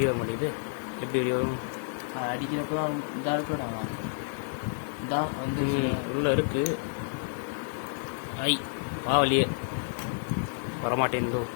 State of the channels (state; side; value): silent; right; 58 dB below the other